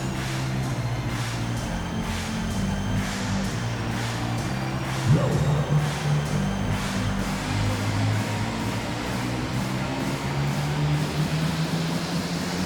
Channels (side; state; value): both; identical; correlation 1.00